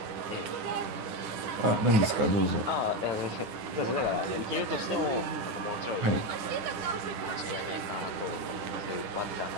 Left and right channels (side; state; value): left; late; 9.6 ms